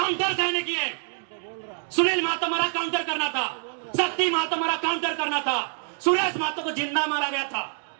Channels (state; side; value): silent; left; digital silence